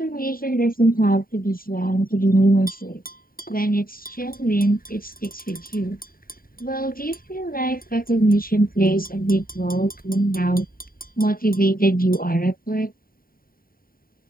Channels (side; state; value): right; late; 0.42 ms